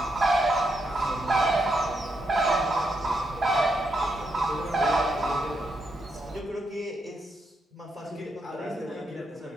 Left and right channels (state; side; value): normal; both; correlation 0.81